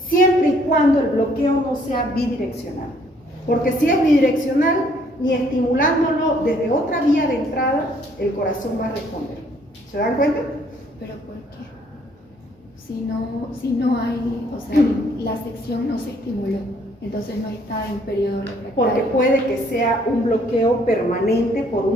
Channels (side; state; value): both; normal; correlation 0.64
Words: y cuando el bloqueo no sea bidireccional. Porque si es bidireccional, ni estimulándolo desde otra vía de entrada, el corazón va a responder. ¿Se dan cuenta? Pero ¿por qué? Si no hay, o sea, la sección no se estimuló, entonces no está en periodo refractario. Porque puede que sea un bloqueo permanente por